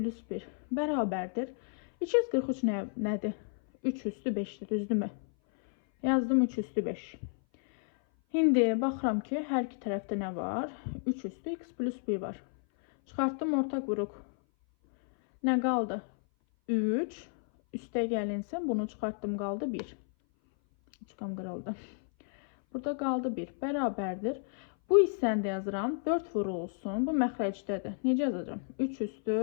1 bərabərdir. 243 nədir? 3 üstü 5'dir, düzdürmü? Yazdım 3 üstü 5. Şimdi baxıram ki, hər iki tərəfdə nə var? 3 üstü x plus 1 var. Çıxartdım ortaq vuruq. Nə qaldı? 3. Üste gəlinsin, bunu çıxartdım, qaldı 1. Üçqam qırıldı. Burada qaldı 1. Bərabərdir. Bu hissəni də yazıram. 4 vurulsun. Bu məxrəcdədir. Necə yazacağım? 3 üstü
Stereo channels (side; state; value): right; silent; 57 dB below the other